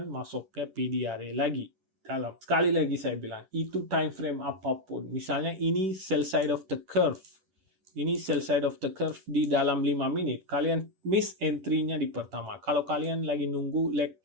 masuknya PDRA lagi. Dalam. Sekali lagi saya bilang, itu time frame apapun. Misalnya ini sell side of the curve. Ini sell side of the curve di dalam 5 menit. Kalian miss entry-nya di pertama. Kalau kalian lagi nunggu leg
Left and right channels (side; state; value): left; late; 10 ms